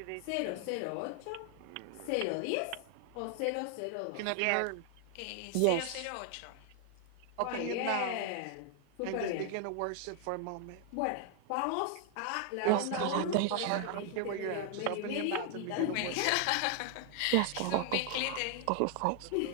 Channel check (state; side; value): different; both; correlation 0.00